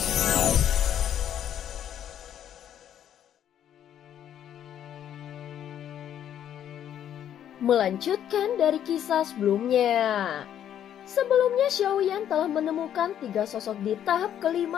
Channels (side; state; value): right; quieter; 10.2 dB